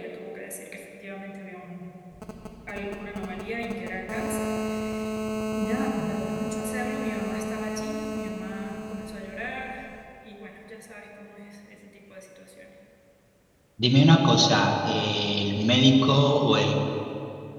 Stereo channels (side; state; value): both; identical; correlation 1.00